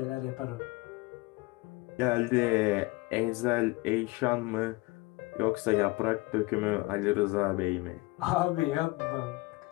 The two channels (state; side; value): quieter; right; 23.0 dB